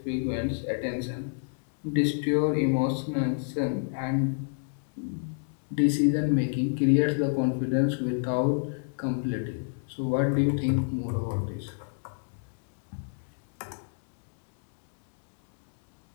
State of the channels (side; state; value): right; silent; digital silence